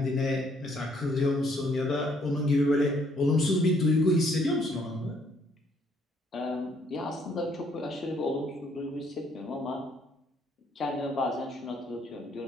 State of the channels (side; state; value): both; normal; correlation 0.67